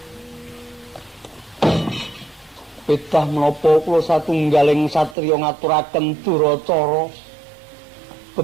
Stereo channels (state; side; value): drops out; left; at 5.2 s